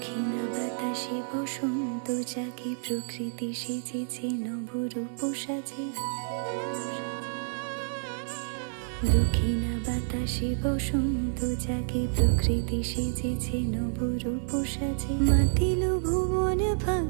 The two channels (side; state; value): left; silent; digital silence